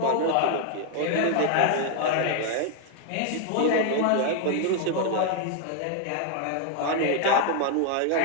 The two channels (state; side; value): different; both; correlation 0.00